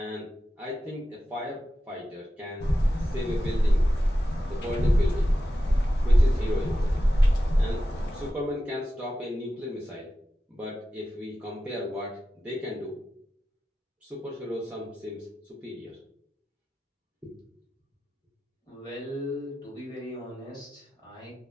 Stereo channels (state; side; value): normal; both; correlation 0.93